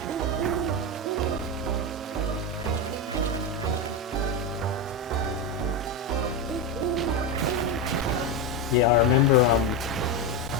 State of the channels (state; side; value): normal; both; correlation 0.12